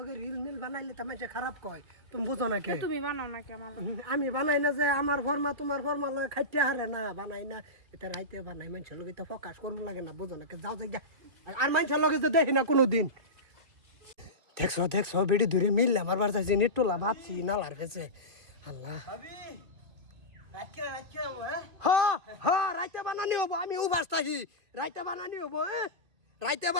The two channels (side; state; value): left; late; 2.5 ms